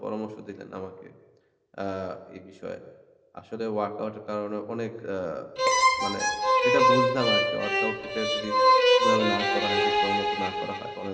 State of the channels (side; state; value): both; identical; correlation 1.00